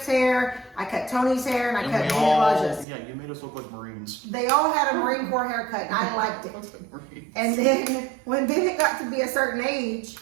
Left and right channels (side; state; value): left; drops out; at 2.9 s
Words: hair, I cut Tony's hair, and I cut Elijah's. Yeah, you made us look like Marines. They all had a Marine Corps haircut, and I liked it. And then when Bennett got to be a certain age,